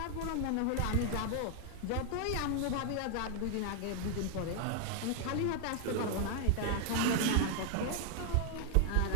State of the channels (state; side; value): different; both; correlation 0.00